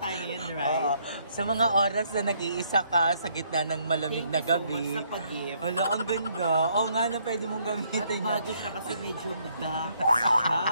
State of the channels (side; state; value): both; inverted; correlation -0.69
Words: ngayon, right? Sa mga oras na nag-iisa ka sa gitna ng malamig na gabi. Thank you so much sa pag-gift. Wala, ang ganda. Oo nga na pwede mong gamitin. At bago siya kasi medyo dark siya.